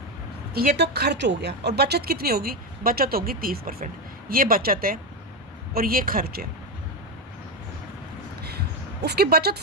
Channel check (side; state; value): both; normal; correlation 0.11